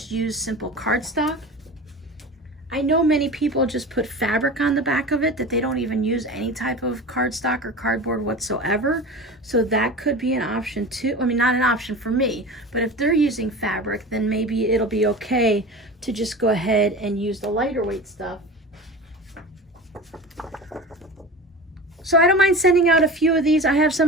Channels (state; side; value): normal; both; correlation 0.32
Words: use simple cardstock? I know many people just put fabric on the back of it, that they don't even use any type of cardstock or cardboard whatsoever. So that could be an option too. I mean, not an option for me, but if they're using fabric, then maybe it'll be okay to just go ahead and use the lighter weight stuff. So I don't mind sending out a few of these. I have